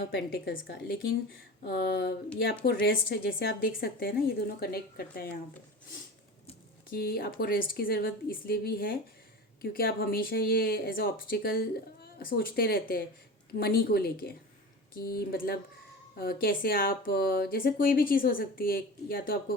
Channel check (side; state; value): both; normal; correlation 0.32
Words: पेंटिकल्स का, लेकिन ये आपको रेस्ट, जैसे आप देख सकते हैं ना, ये दोनों कनेक्ट करता है यहाँ पे, कि आपको रेस्ट की ज़रूरत इसलिए भी है क्योंकि आप हमेशा ये एज अ ऑब्स्टिकल सोचते रहते हैं मनी को लेके, कि मतलब कैसे आप जैसे कोई भी चीज़ हो सकती है, या तो आपको